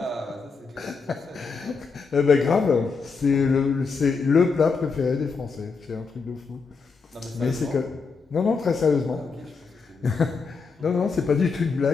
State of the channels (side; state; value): right; quieter; 4.9 dB